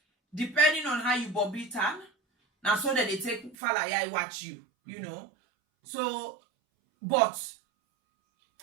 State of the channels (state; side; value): drops out; left; at 3.6 s